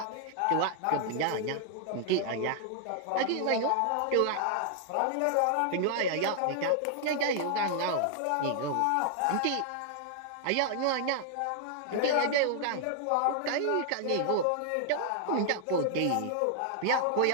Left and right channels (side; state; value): both; different; correlation 0.00